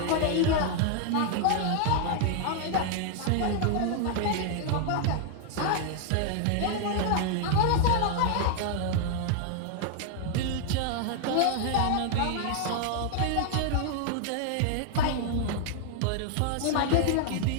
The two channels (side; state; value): both; different; correlation 0.00